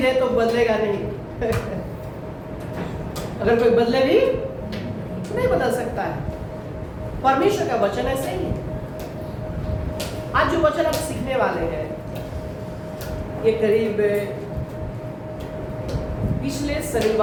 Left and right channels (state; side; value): identical; both; correlation 1.00